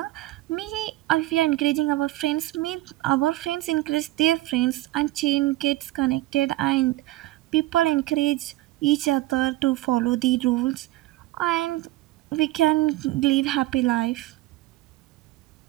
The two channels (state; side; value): quieter; left; 17.5 dB